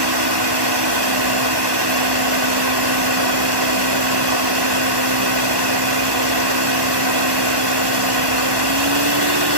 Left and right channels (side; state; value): left; late; 1.1 ms